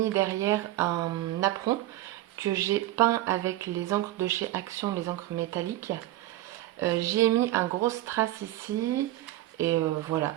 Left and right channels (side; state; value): left; quieter; 15.6 dB